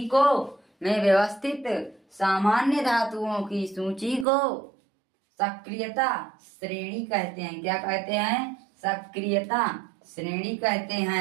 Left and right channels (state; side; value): drops out; left; at 4.2 s